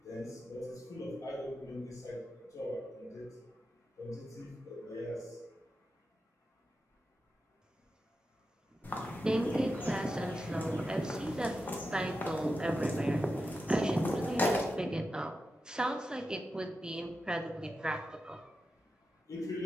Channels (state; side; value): normal; both; correlation 0.89